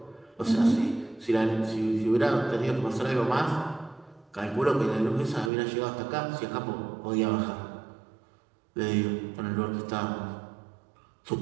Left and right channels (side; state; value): left; drops out; at 5.5 s